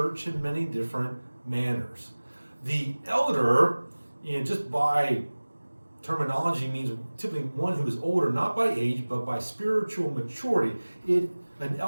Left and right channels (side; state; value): both; inverted; correlation -1.00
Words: in many different manners. The elder, just by terminology, means typically one who is older, not by age, but by spiritual maturity. An